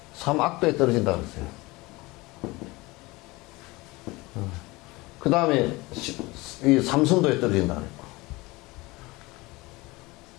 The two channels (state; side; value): quieter; right; 22.3 dB